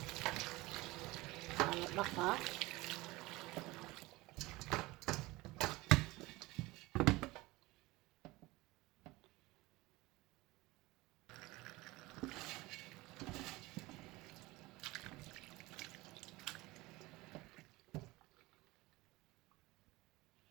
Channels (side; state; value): left; quieter; 20.8 dB